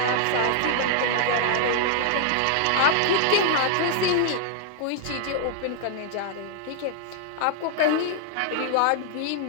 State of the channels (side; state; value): both; different; correlation -0.01